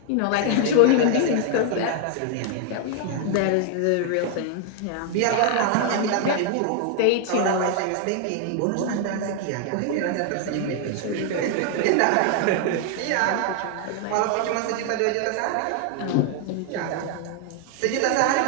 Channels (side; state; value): both; different; correlation 0.00